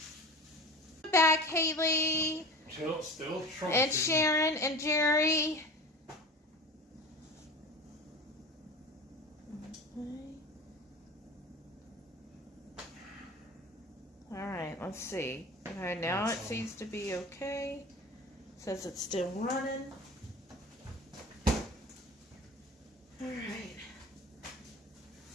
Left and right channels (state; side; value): normal; both; correlation 0.35